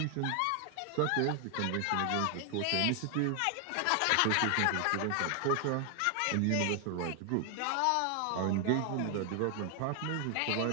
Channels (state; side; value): different; both; correlation 0.00